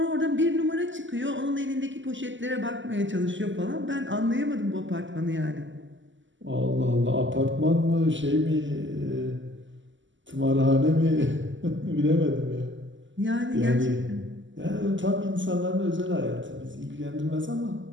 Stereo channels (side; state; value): left; late; 0.54 ms